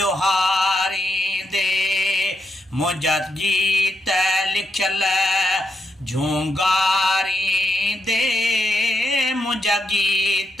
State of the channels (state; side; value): normal; both; correlation 0.82